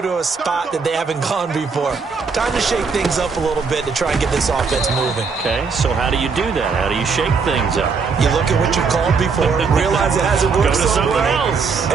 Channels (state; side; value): quieter; left; 5.1 dB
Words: a spot that they haven't gone before. Time to shake things up a little bit to try and get this offense moving. Okay, so how do you do that? How do you shake things up? You look at what you called before, realize it hasn't worked Go to so something well, else.